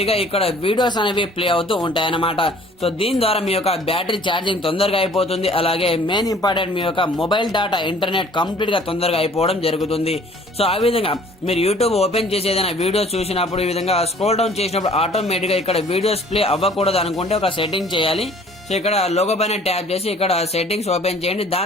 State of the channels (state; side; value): normal; both; correlation 0.54